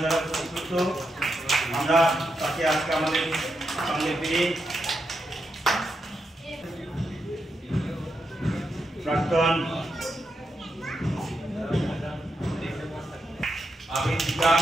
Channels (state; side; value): normal; both; correlation 0.84